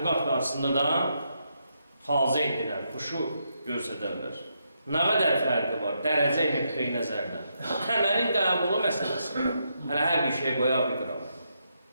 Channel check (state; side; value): inverted; both; correlation -0.80